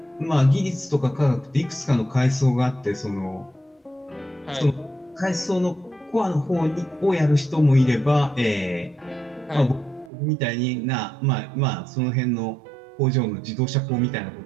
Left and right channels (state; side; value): drops out; left; at 10.1 s